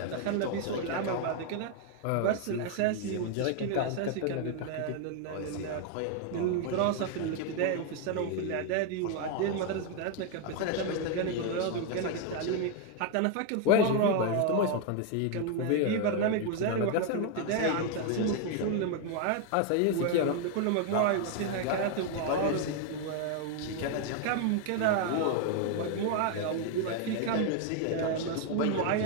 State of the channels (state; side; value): different; both; correlation 0.01